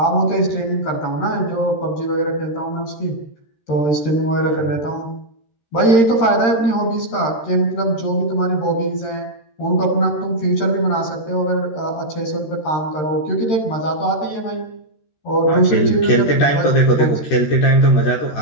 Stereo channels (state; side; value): late; right; 13 ms